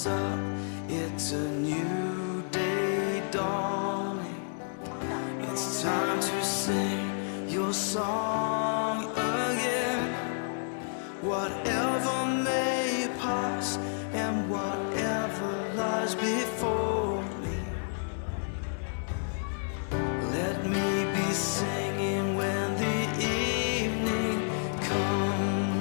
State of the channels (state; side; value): silent; right; digital silence